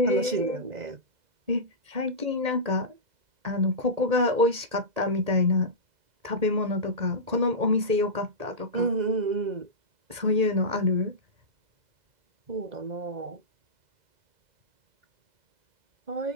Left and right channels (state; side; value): late; left; 1.8 ms